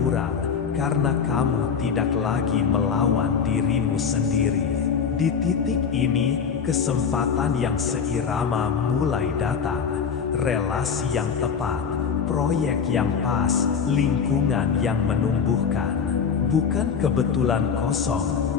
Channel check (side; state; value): right; quieter; 6.5 dB